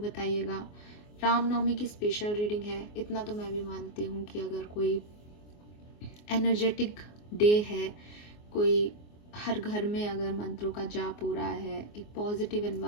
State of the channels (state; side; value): late; right; 24 ms